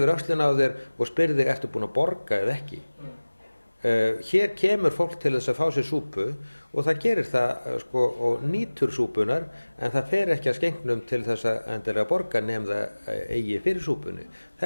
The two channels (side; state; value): both; inverted; correlation -1.00